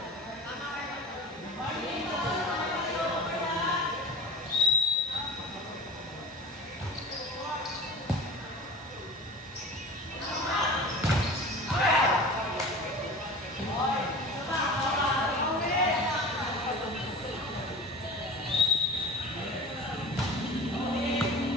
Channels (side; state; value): both; normal; correlation 0.36